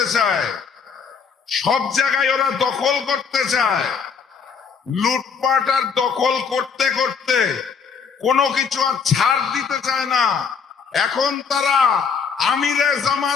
চায়, সব জায়গায় ওরা দখল করতে চায়। লুটপাট আর দখল করতে করতে কোনো কিছু আর ছাড় দিতে চায় না। এখন তারা আমিরে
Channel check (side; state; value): right; quieter; 6.1 dB